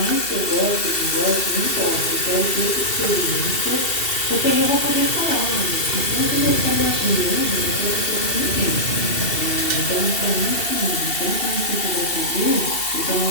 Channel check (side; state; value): right; late; 2.7 ms